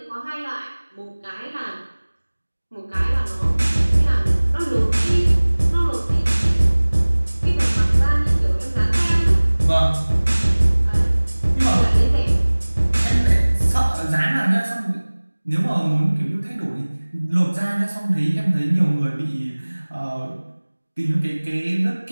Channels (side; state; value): both; inverted; correlation -1.00